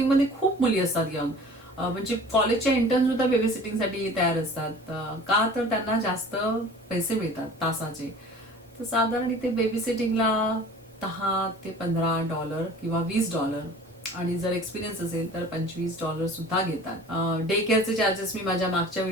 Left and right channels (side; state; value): both; normal; correlation 0.44